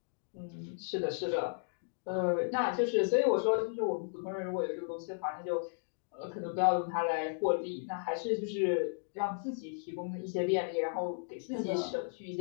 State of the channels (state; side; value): silent; right; digital silence